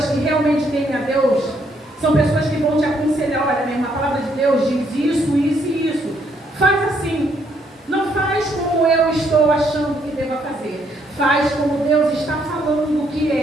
que realmente temem a Deus são pessoas que vão te aconselhar. Olha, mesmo, a palavra de Deus diz isso, isso e isso. Faz assim. Não faz como eu estou achando que deva fazer. Faz como Deus está falando que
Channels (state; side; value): normal; both; correlation 0.71